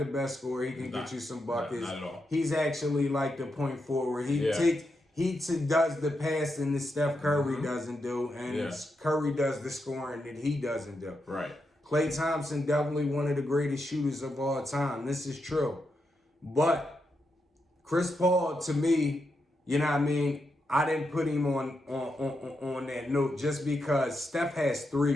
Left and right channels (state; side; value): normal; both; correlation 0.84